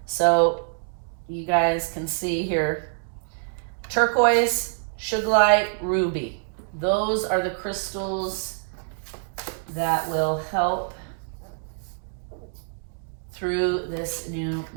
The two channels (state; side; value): silent; left; digital silence